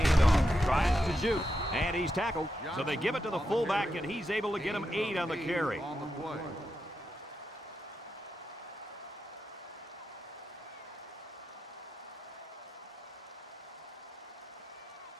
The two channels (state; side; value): normal; both; correlation 0.86